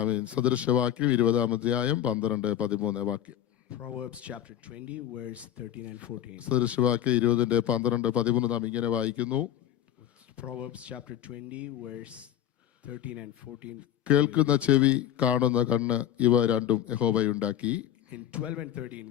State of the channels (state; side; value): quieter; right; 10.8 dB